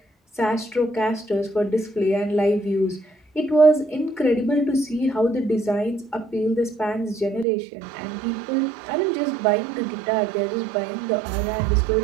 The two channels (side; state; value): left; drops out; at 7.5 s